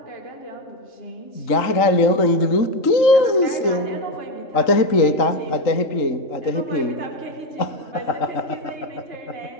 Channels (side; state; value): right; late; 3.8 ms